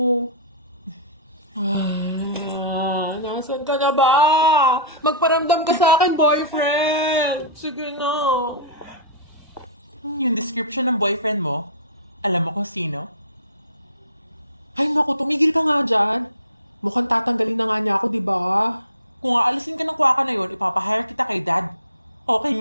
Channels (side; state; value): both; inverted; correlation -0.31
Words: Nasaan ka na ba? Magparamdam ka sa akin, boyfriend! Sige na. Yung description ng boyfriend mo, alam mo kung sino? Ay naku, tumigil ka nga dyan. Mukhang tatanggalin na nga niya ako, di ba? Kung aalisin ka ng kwaka na yun, ipapahire kita kay dad. Okay